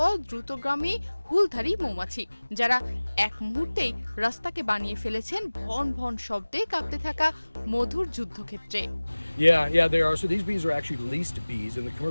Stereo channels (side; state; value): both; inverted; correlation -1.00